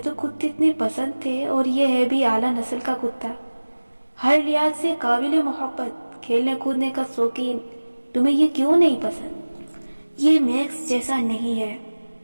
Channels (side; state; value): both; inverted; correlation -1.00